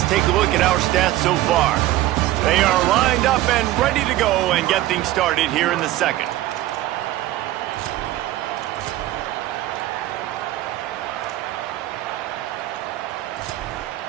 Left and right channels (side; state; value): left; quieter; 15.5 dB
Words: take a look at our stats so far. They are lined up and ready to go and get things started here in the second.